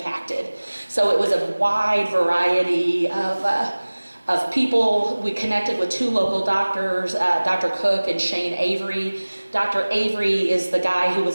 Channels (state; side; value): inverted; both; correlation -1.00